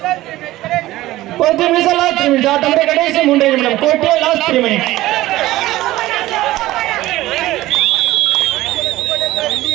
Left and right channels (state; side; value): quieter; left; 16.7 dB